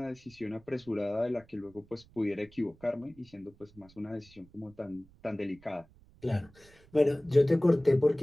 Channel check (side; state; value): right; noise; rumble, 26 dB below the sound